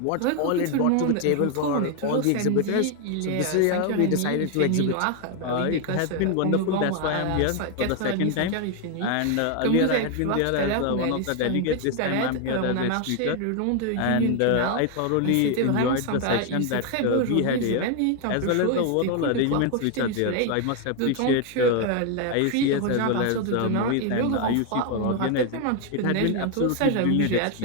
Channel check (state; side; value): different; both; correlation 0.01